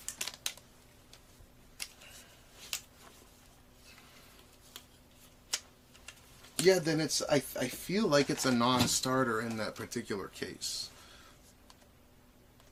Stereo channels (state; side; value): identical; both; correlation 1.00